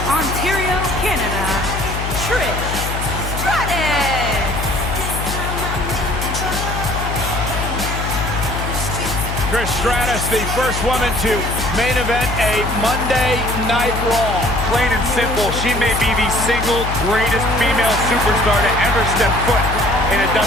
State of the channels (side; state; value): left; noise; hum, 4 dB below the sound